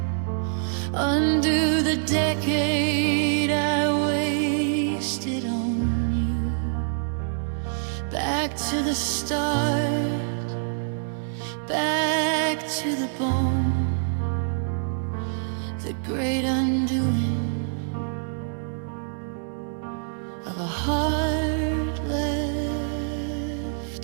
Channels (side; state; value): left; silent; digital silence